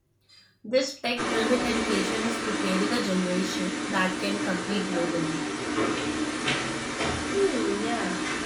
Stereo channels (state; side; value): identical; both; correlation 1.00